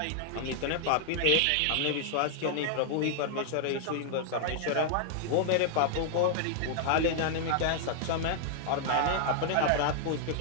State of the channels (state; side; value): different; both; correlation 0.00